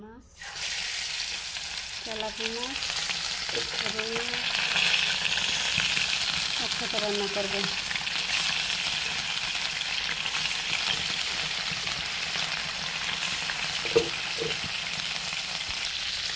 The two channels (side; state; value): both; identical; correlation 1.00